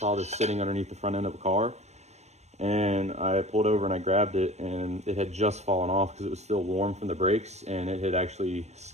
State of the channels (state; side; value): late; left; 0.32 ms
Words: this sitting underneath the front end of a car, and I pulled over and I grabbed it, and it had just fallen off because it was still warm from the brakes, and it had actually